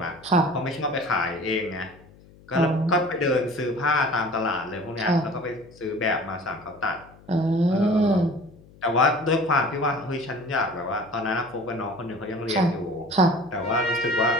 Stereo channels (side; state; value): left; noise; hum, 24 dB below the sound